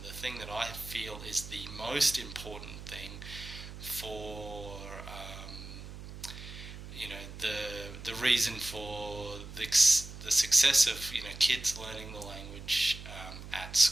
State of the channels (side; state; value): right; noise; hum, 12 dB below the sound